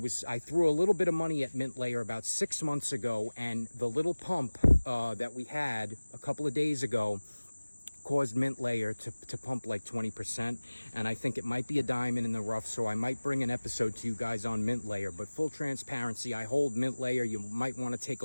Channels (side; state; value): both; inverted; correlation -1.00